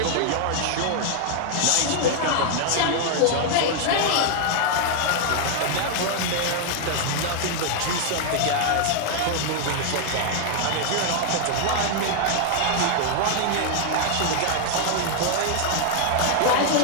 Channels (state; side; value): different; both; correlation 0.00